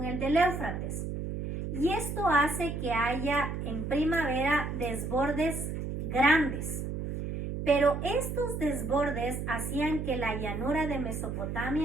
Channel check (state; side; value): noise; right; hum, 4 dB below the sound